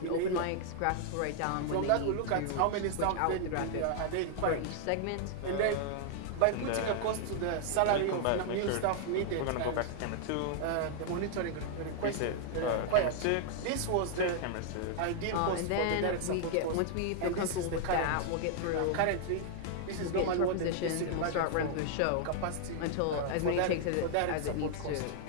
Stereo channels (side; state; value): both; different; correlation 0.00